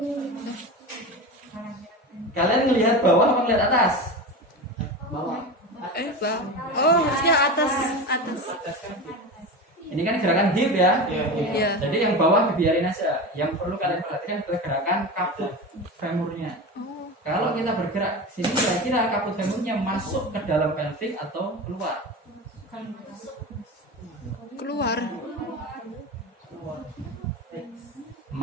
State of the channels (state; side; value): normal; both; correlation 0.26